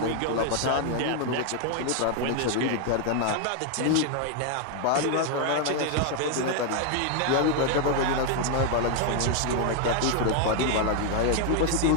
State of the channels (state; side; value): different; both; correlation 0.01